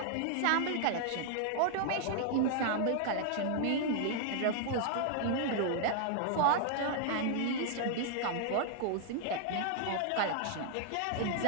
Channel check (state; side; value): different; both; correlation -0.01